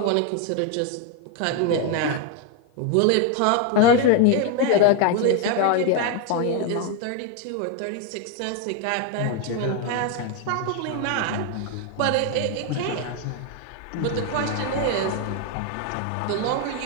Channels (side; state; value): both; different; correlation 0.01